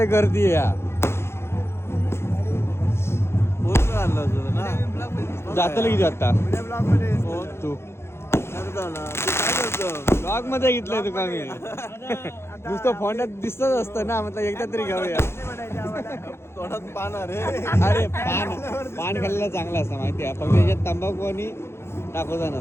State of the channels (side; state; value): right; late; 0.12 ms